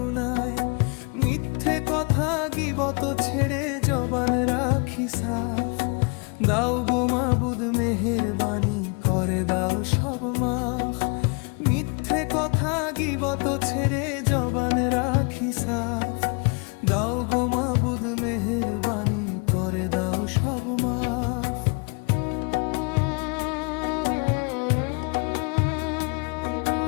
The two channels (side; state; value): right; quieter; 33.8 dB